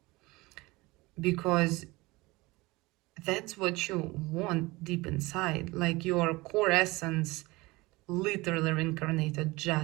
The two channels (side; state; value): left; quieter; 22.1 dB